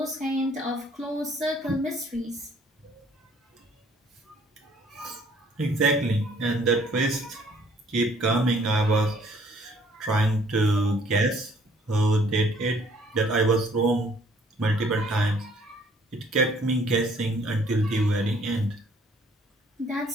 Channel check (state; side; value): normal; both; correlation 0.60